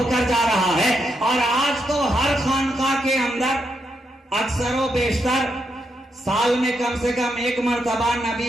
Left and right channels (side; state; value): both; normal; correlation 0.81